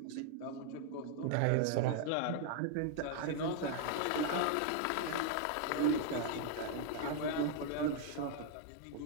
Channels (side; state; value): both; different; correlation 0.00